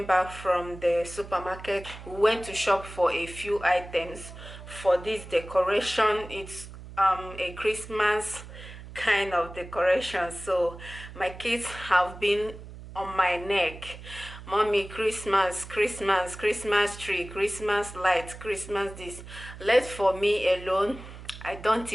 back from the supermarket. We went to shop for a few items for this decoration. It's a Christmas kind of decoration, so my kids have been on my neck. Mommy, Christmas tree, Christmas lights, Christmas this. Let for me alone, I don't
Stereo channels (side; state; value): right; noise; hum, 14 dB below the sound